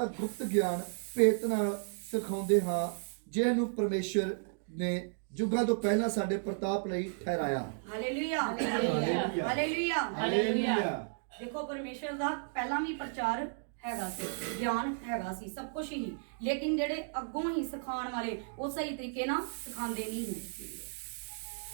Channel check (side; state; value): left; silent; digital silence